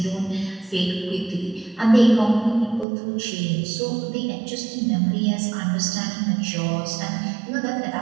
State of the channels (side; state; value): left; drops out; at 2.9 s